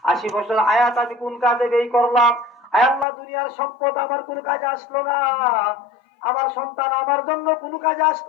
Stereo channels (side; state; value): right; drops out; at 3.1 s